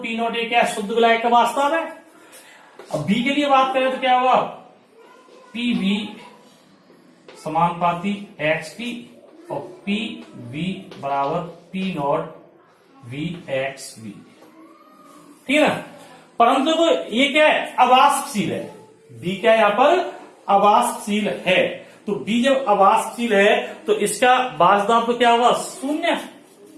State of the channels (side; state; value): both; identical; correlation 1.00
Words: P नॉट A क्या शुद्ध विलायक का वास्तव है। अब B के लिए बात करें तो क्या होगा PB समानुपाती XP और PV बराबर P नॉट V XV, ठीक है ना। परंतु तो ये क्या है अवाष्पशील है, B क्या है यहां पर अवाष्पशील है, तो B जब अवाष्पशील है तो इसका वाष्प दाब तो क्या होगा शून्य,